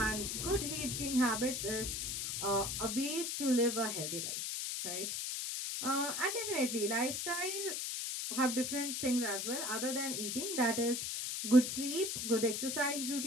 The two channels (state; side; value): noise; left; hiss, 2 dB below the sound